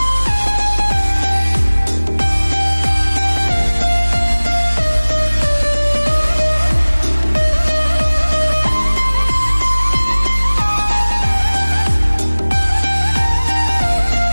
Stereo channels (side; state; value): both; inverted; correlation -1.00